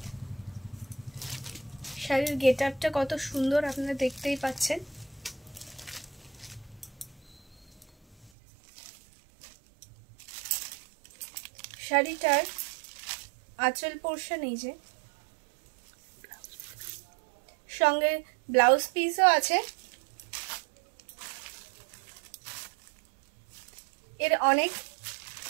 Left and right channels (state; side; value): drops out; left; at 8.3 s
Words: শাড়ির গেট আপটা কত সুন্দর আপনারা দেখতেই পাচ্ছেন। শাড়িটার আঁচল পোর্শন এই যে, সঙ্গে ব্লাউজ পিসও আছে। এর অনেক